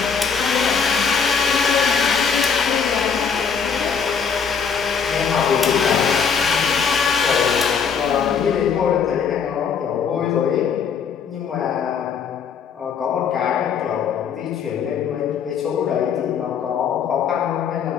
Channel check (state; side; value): quieter; right; 6.6 dB